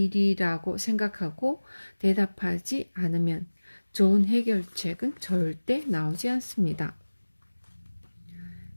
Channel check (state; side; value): inverted; both; correlation -1.00